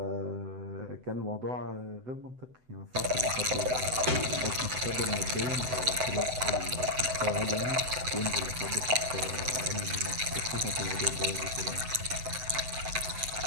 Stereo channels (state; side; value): late; left; 7.9 ms